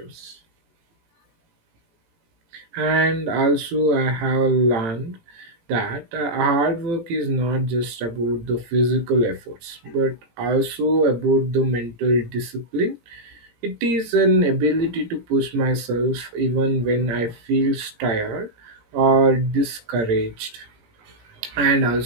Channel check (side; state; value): left; late; 17 ms